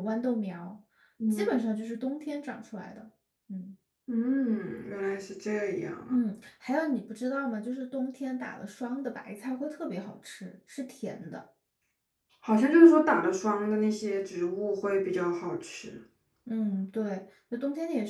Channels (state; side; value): identical; both; correlation 1.00